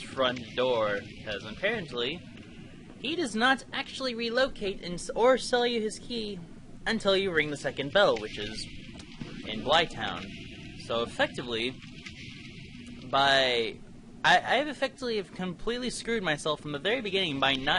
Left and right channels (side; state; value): both; identical; correlation 1.00